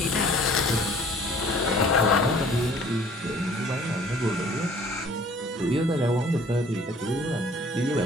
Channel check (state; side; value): normal; both; correlation 0.53